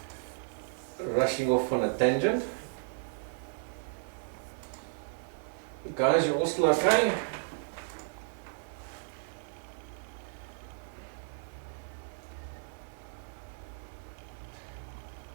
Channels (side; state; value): left; silent; digital silence